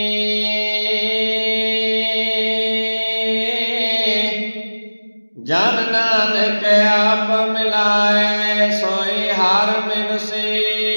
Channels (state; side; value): inverted; both; correlation -1.00